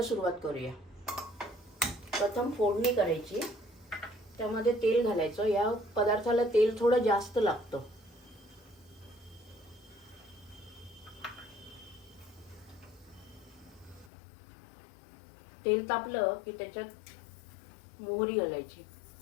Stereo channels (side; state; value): right; drops out; at 14.1 s